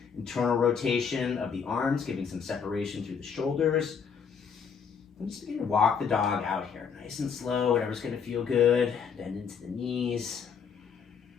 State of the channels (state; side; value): quieter; right; 6.5 dB